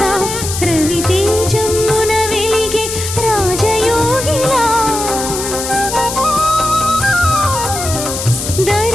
రవితేజమున వెలిగే రాజయోగిలా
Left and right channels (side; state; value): left; noise; hiss, 6 dB below the sound